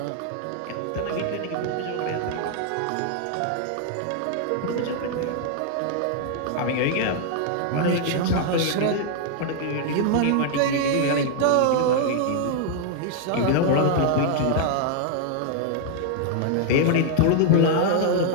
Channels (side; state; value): both; different; correlation 0.00